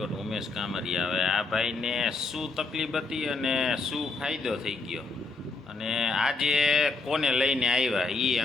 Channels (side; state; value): right; quieter; 3.8 dB